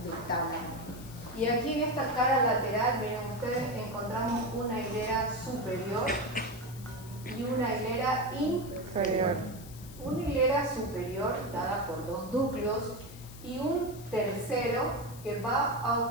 del tálamo. Y aquí en esta cara lateral, miren ustedes, encontramos una hilera superior y una hilera inferior. Una hilera superior dada por dos núcleos y un tercero que va a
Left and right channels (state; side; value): noise; left; hiss, 18 dB below the sound